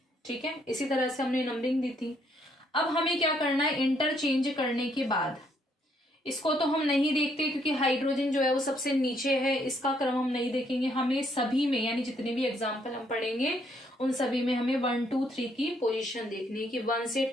ठीक है, इसी तरह से हमने नंबरिंग दी थी। अब हमें क्या करना है, इंटरचेंज करने के बाद इसको तो हम नहीं देखते क्योंकि हाइड्रोजन जो है वो सबसे नीचे है, इसका क्रम हम नहीं देखेंगे। हमें सभी में, यानी जितने भी एग्जाम्पल हम पढ़ेंगे उन सभी में हमें 1 2 3 की पोजीशन देखनी है कि 1 से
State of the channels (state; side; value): normal; both; correlation 0.70